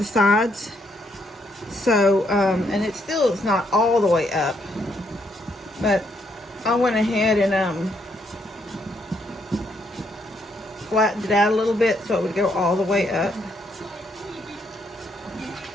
sides. So, and it still is not all the way up, but I went ahead and flattened it out a little bit so it would go all the way up.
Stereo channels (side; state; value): both; normal; correlation 0.74